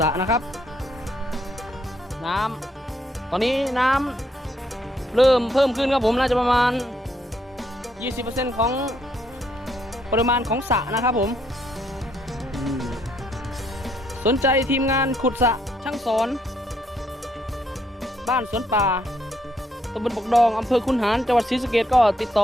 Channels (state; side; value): normal; both; correlation 0.72